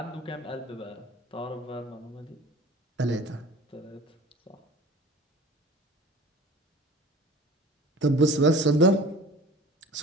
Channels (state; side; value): normal; both; correlation 0.42